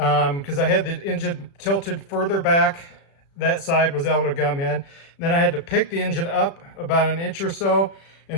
I had the engine tilted further back. That side was able to gum in. Then I had to pick the engine up about an inch or so,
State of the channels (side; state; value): right; late; 36 ms